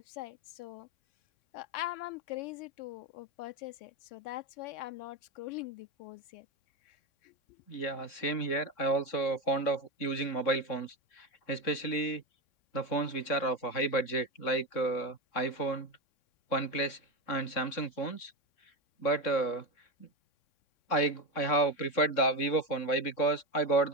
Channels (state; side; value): late; right; 3.6 ms